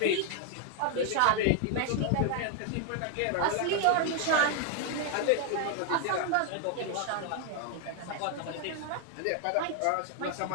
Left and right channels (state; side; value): different; both; correlation 0.00